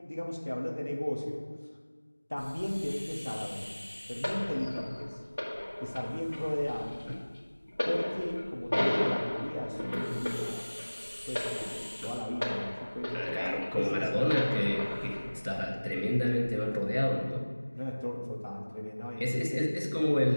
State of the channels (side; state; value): both; inverted; correlation -1.00